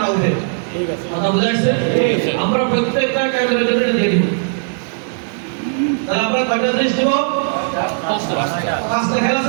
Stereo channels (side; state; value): left; silent; 68 dB below the other